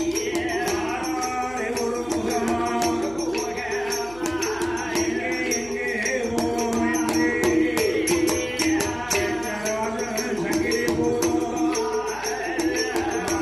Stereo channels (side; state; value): left; noise; hum, 20 dB below the sound